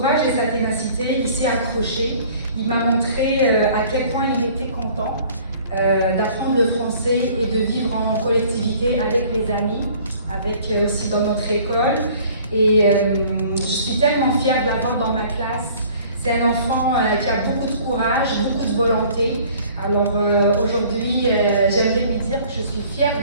et sa ténacité, il s'est accroché. Il m'a montré à quel point il était content d'apprendre le français et de vivre en collectivité avec les amis, avec aussi dans notre école. Et je suis tellement fière de l'avoir dans ma classe. C'est un enfant qui a beaucoup de courage, beaucoup de volonté. Alors aujourd'hui, j'aimerais lui dire que je suis fière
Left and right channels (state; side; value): inverted; both; correlation -0.52